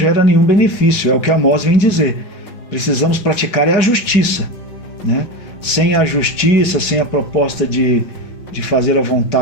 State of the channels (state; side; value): late; right; 5.2 ms